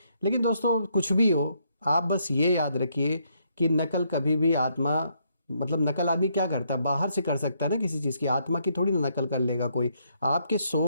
लेकिन दोस्तों कुछ भी हो, आप बस ये याद रखिए कि नकल कभी भी आत्मा, मतलब नकल आदमी क्या करता है, बाहर से कर सकता है ना किसी चीज़ की, आत्मा की थोड़ी ना नकल कर लेगा कोई। आपके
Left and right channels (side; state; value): both; inverted; correlation -0.73